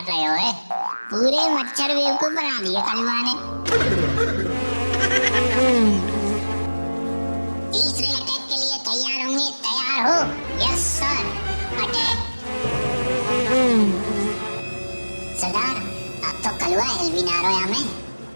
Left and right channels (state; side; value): inverted; both; correlation -1.00